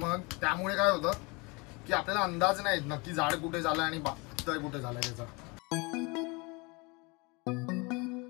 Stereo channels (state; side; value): quieter; right; 27.8 dB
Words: त्यामुळे काय होतं की आपल्याला अंदाज नाही येत नक्की जाड कुठे झालाय आणि पातळ कुठे झालाय त्याचा।